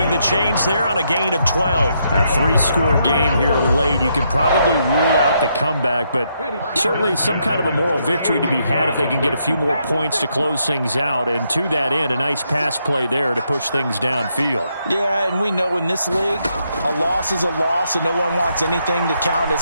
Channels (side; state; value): both; inverted; correlation -0.77